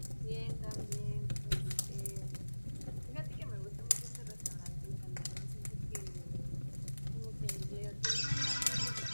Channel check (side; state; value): both; inverted; correlation -1.00